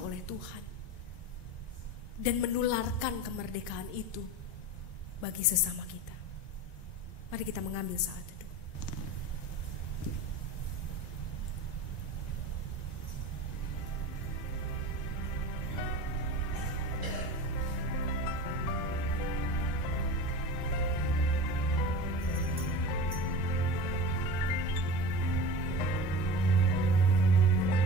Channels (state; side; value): late; right; 1.9 ms